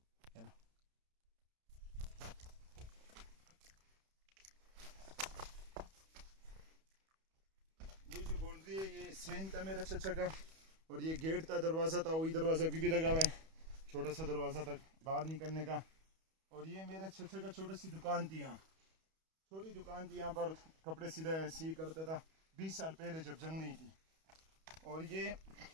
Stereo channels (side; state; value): left; late; 31 ms